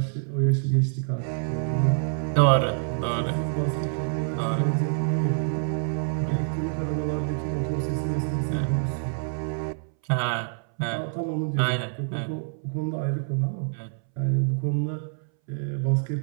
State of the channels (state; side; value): silent; left; 61 dB below the other